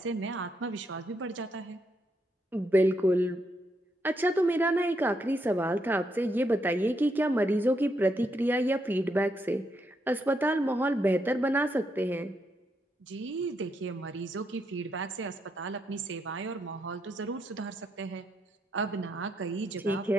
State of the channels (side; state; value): both; normal; correlation 0.78